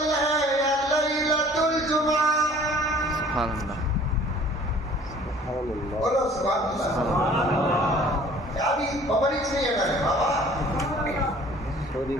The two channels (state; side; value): normal; both; correlation 0.52